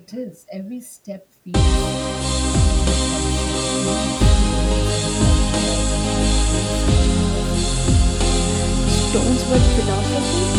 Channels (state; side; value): identical; both; correlation 1.00